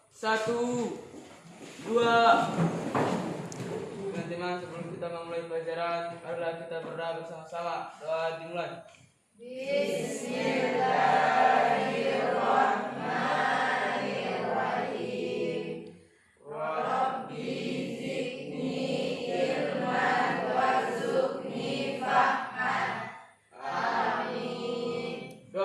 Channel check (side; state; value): both; identical; correlation 1.00